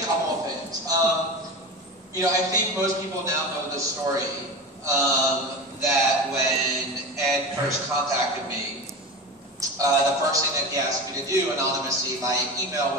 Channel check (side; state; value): both; normal; correlation 0.28